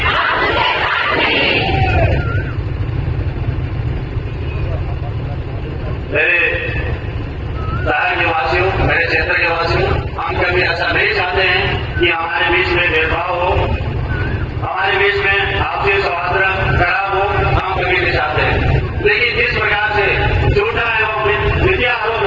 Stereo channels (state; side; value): identical; both; correlation 1.00